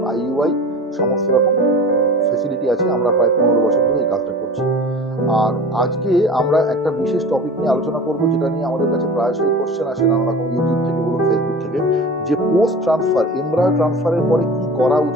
আইইউআই সমস্ত রকম ফেসিলিটি আছে। আমরা প্রায় 15 বছর ধরে এই কাজটা করছি। আর আজকে আমরা একটা বিশেষ টপিক নিয়ে আলোচনা করব, যেটা নিয়ে আমাদের কাছে প্রায়শই কোশ্চেন আসে নানা রকম, ইউটিউব থেকে বলুন, ফেসবুক থেকে, যে পোস্ট ট্রান্সফার, এমব্রায়ো ট্রান্সফারের পরে কি করা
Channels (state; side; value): normal; both; correlation 0.37